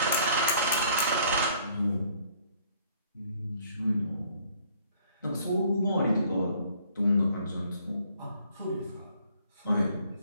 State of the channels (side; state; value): both; inverted; correlation -0.60